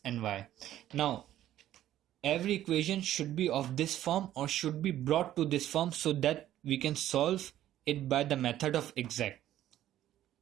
and y. Now, every equation should be of this form or should be brought to this form so that we can solve it by the method of exact.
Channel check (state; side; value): quieter; left; 12.7 dB